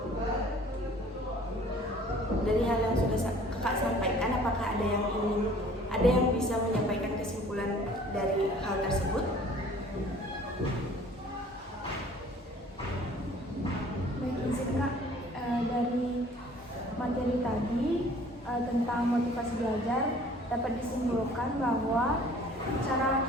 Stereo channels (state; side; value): normal; both; correlation 0.52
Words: Dari hal yang sudah kakak sampaikan, apakah ada yang bisa menyampaikan kesimpulan dari hal tersebut? Baik, izin Kak, dari materi tadi tentang motivasi belajar dapat disimpulkan bahwa cara